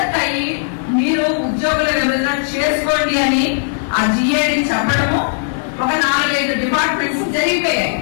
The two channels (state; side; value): silent; right; digital silence